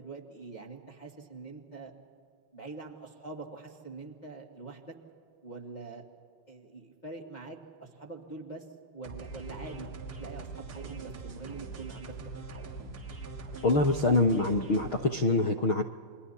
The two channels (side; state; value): right; late; 6.4 ms